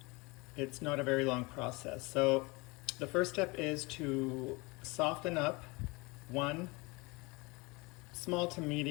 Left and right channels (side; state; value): right; quieter; 25.8 dB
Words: it's not a very long process. So the first step is to soften up one small to